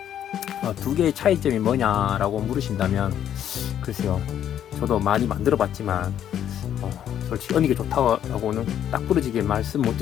두 개의 차이점이 뭐냐라고 물으신다면, 글쎄요, 저도 많이 만들어 봤지만 솔직히 어느 게 좋다고는 딱 부러지게 말씀 못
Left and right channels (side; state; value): right; quieter; 10.2 dB